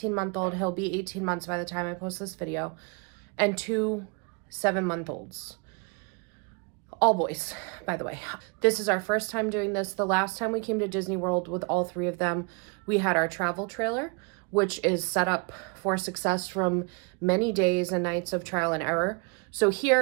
He'll be 18 months by the time I post this video, and 2 7-month-olds. All boys, by the way. This is our first time doing this. The last time we came to Disney World with all 3 of them, we had our travel trailer, which is set up for success from many days and nights of trial and error. So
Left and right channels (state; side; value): quieter; left; 33.8 dB